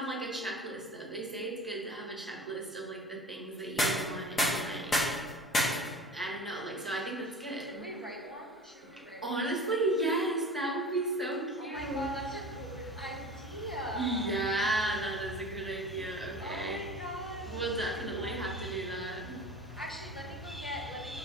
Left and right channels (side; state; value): both; normal; correlation 0.37